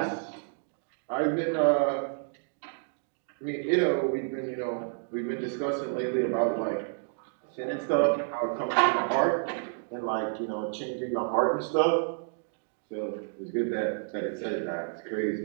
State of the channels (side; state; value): left; silent; digital silence